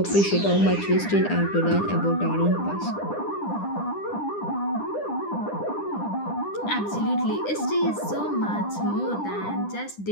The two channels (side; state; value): right; late; 9.9 ms